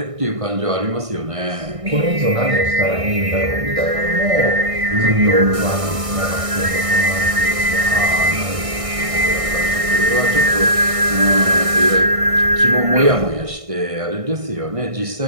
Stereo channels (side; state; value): left; late; 1.6 ms